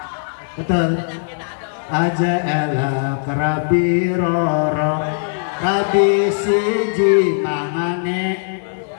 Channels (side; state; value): right; silent; digital silence